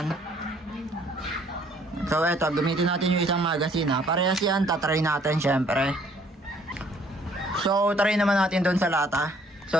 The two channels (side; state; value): both; normal; correlation 0.61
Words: So, eto, gamitin natin yung isang magazine, ha. Parehas yan, tatry natin, syempre. So, try naman natin doon sa lata. So,